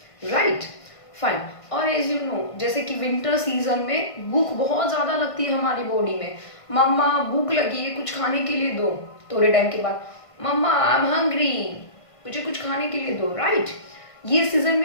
राइट? फाइन. और एज यू नो, जैसे कि विंटर सीजन में भूख बहुत ज्यादा लगती है हमारी बॉडी में. मम्मा भूख लगी है, कुछ खाने के लिए दो. थोड़े टाइम के बाद मम्मा आई एम हंग्री, मुझे कुछ खाने के लिए दो, राइट? ये सीजन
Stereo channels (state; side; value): late; right; 1.5 ms